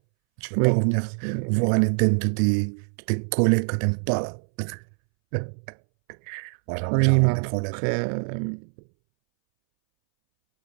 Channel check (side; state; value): left; silent; 63 dB below the other